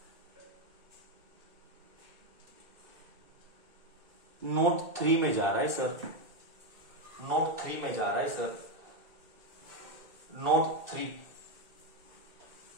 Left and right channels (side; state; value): left; late; 2.7 ms